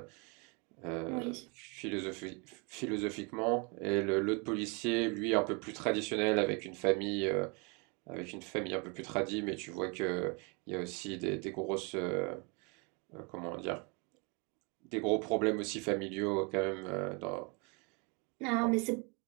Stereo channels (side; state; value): left; quieter; 32.1 dB